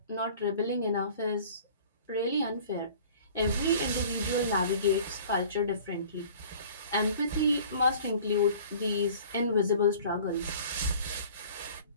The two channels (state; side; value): inverted; both; correlation -0.47